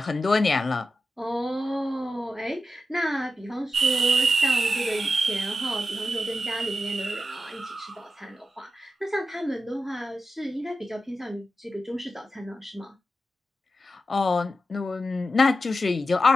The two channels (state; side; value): normal; both; correlation 0.90